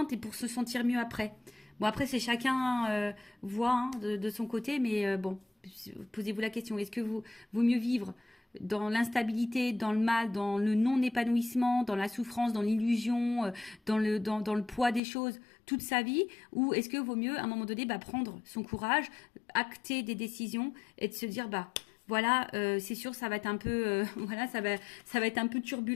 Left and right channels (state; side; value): drops out; right; at 15.0 s